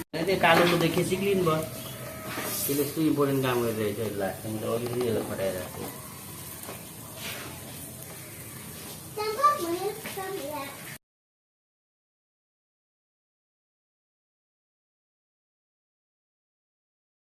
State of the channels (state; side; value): identical; both; correlation 1.00